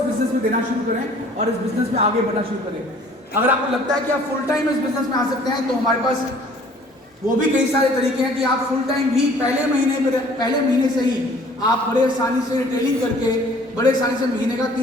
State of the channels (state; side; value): normal; both; correlation 0.54